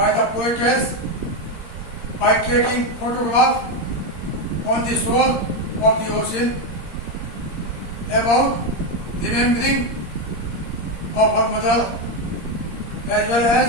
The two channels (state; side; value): late; right; 17 ms